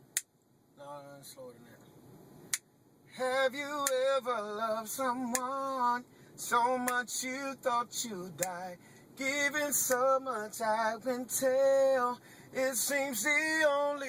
No, slower than that. Have you ever loved someone so much you thought you'd die? Giving so much I can tell. It seems the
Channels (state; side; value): identical; both; correlation 1.00